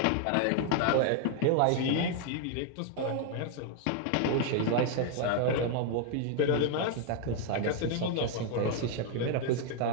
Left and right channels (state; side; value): different; both; correlation 0.00